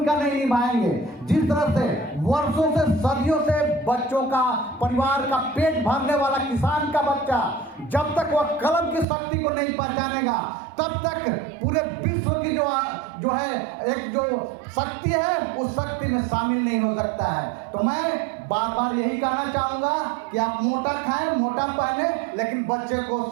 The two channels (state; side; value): drops out; left; at 9.1 s